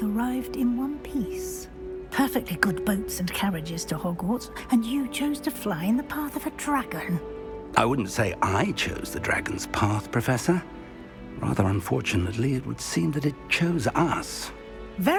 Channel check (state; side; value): identical; both; correlation 1.00